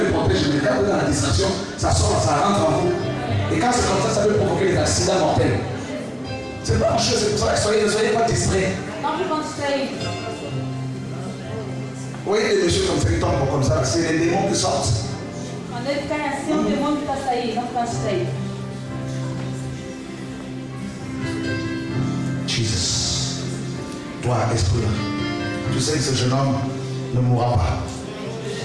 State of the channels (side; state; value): both; identical; correlation 1.00